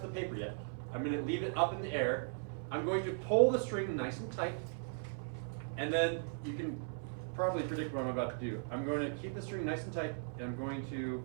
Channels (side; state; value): left; silent; 53 dB below the other